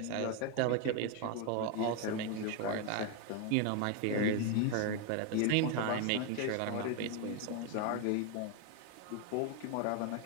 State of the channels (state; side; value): different; both; correlation 0.01